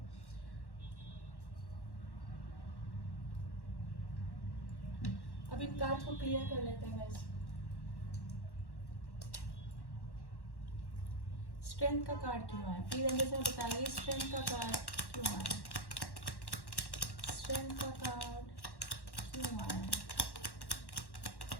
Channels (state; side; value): late; right; 1.1 ms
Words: अब इन कार्ड को क्लियर कर लेते हैं गाइस। स्ट्रेंथ का कार्ड क्यों आया, प्लीज अंदर से बताइए, स्ट्रेंथ का कार्ड क्यों आया, स्ट्रेंथ का कार्ड क्यों आया,